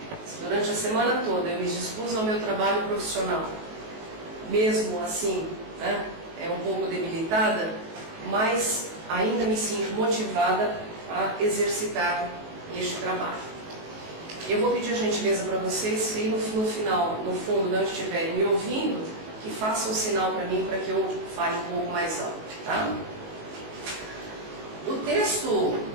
Se durante a semana toda eu me dispus ao meu trabalho profissional, mesmo assim, né, é um pouco debilitada, mas ainda me sinto motivada a exercitar este trabalho. Eu vou pedir a gentileza para vocês que aí no final, no fundo, não estiverem me ouvindo, que façam um sinal para mim para que eu fale um pouco mais alto, tá? O texto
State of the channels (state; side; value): late; left; 19 ms